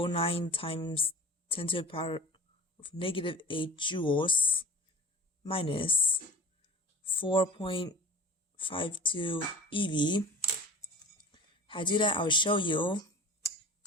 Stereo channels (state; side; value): normal; both; correlation 0.39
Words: times 10 to the power of negative 8 joules minus 4.52 eV. How to do that, I'll show you.